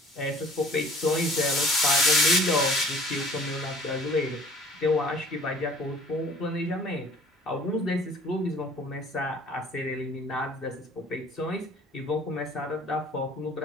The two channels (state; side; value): normal; both; correlation 0.50